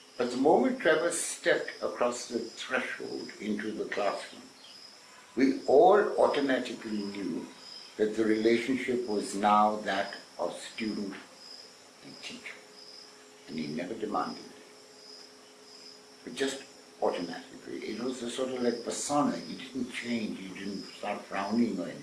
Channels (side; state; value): both; identical; correlation 1.00